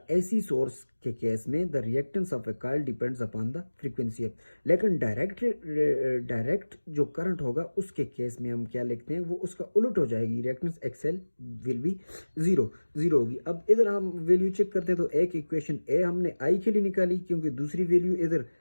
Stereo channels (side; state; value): both; inverted; correlation -1.00